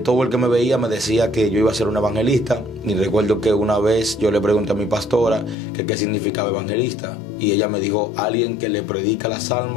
todo el que me veía me decía que yo iba a ser un evangelista. Y recuerdo que una vez yo le pregunté a mi pastora que qué significaba evangelista. Y ella me dijo, alguien que le predica las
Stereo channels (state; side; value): drops out; right; at 5.6 s